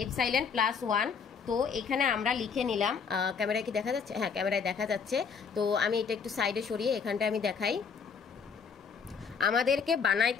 +1। তো এখানে আমরা লিখে নিলাম, ক্যামেরায় কি দেখা যাচ্ছে? হ্যাঁ, ক্যামেরায় দেখা যাচ্ছে। তো আমি এটা একটু সাইডে সরিয়ে এখানটা আমি দেখাই। আমাদেরকে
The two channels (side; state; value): right; quieter; 6.1 dB